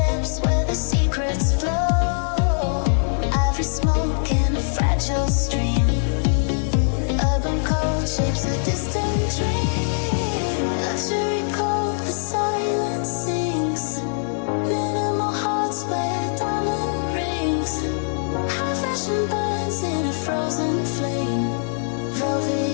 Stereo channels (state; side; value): silent; right; digital silence